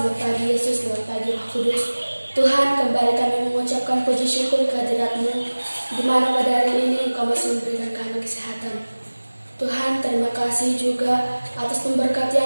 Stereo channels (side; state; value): both; inverted; correlation -1.00